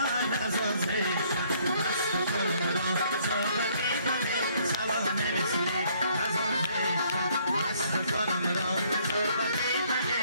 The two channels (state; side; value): inverted; both; correlation -0.64